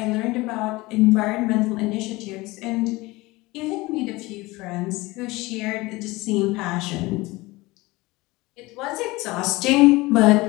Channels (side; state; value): right; quieter; 21.4 dB